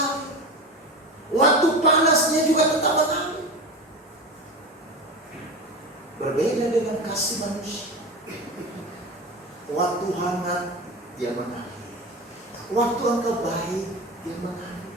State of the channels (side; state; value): both; normal; correlation 0.26